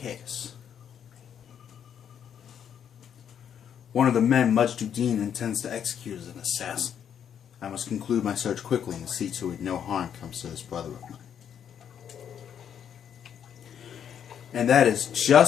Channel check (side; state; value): right; quieter; 8.7 dB